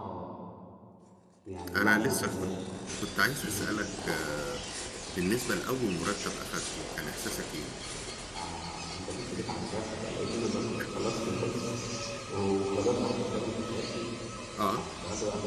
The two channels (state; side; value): identical; both; correlation 1.00